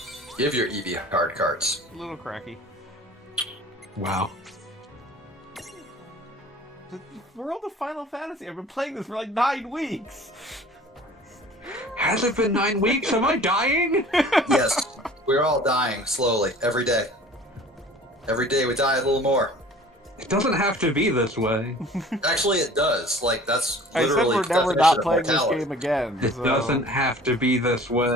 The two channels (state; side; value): normal; both; correlation 0.47